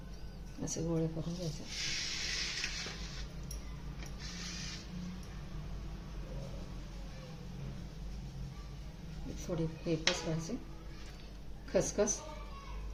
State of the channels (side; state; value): both; identical; correlation 1.00